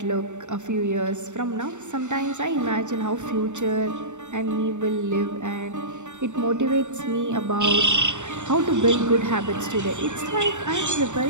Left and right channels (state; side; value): late; left; 0.84 ms